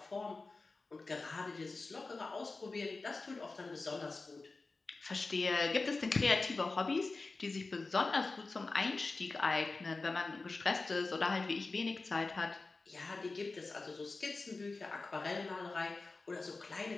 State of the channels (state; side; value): quieter; right; 3.7 dB